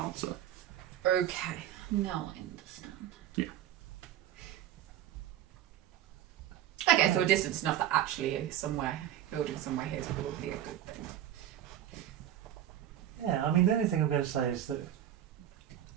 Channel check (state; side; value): quieter; left; 11.6 dB